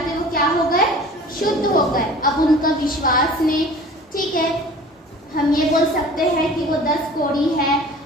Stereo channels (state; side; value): normal; both; correlation 0.44